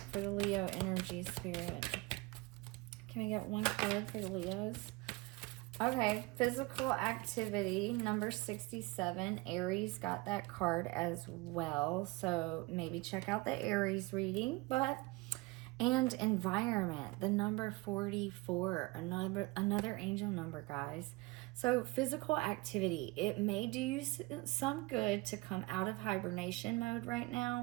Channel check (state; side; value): quieter; left; 23.3 dB